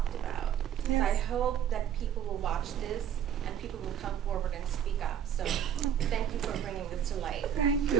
about. So I hope that people will watch this and people will come forward and speak up. So thank you for bringing this to light. Thank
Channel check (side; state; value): left; quieter; 9.2 dB